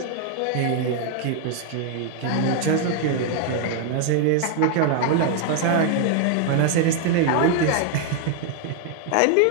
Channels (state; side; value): different; both; correlation 0.00